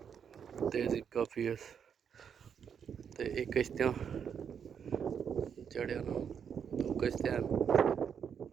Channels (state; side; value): quieter; left; 7.5 dB